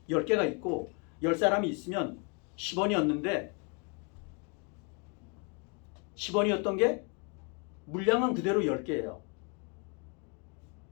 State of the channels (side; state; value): right; quieter; 34.3 dB